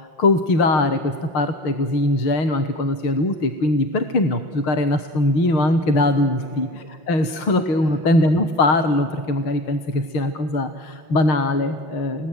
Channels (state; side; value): late; right; 5.8 ms